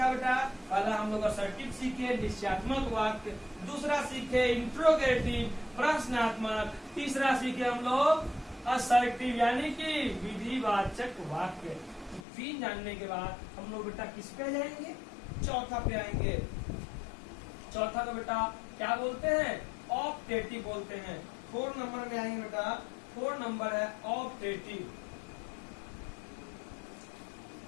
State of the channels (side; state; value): right; drops out; at 12.2 s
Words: बेटा? पहला हम लोग असर्टिव सीखे, निश्चयात्मक वाक्य। दूसरा सीखे इंट्रोगेटिव, प्रश्नात्मक। तीसरा सीखे हम लोग असर्टिव यानी कि विधिवाचक वाक्य। 3 जानने के बाद हम लोग बेटा किस पे जाएंगे? चौथा पे आएंगे। चौथा को बेटा क्या बोलते हैं? ऑप्टेटिव बोलते हैं। 4 नंबर में आएंगे बेटा। 4 नंबर है optative.